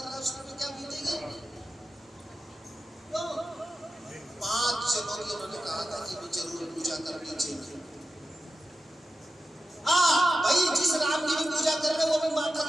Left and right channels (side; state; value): both; normal; correlation 0.92